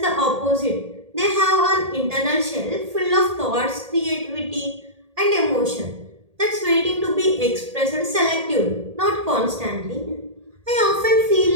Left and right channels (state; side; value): late; left; 1.8 ms